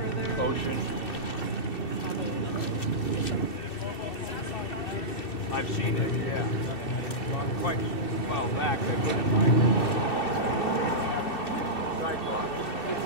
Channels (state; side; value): late; right; 2.7 ms